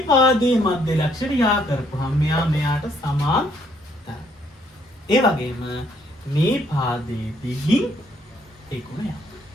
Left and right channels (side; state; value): both; normal; correlation 0.68